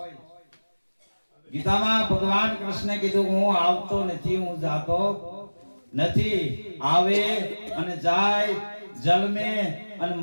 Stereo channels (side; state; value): both; inverted; correlation -1.00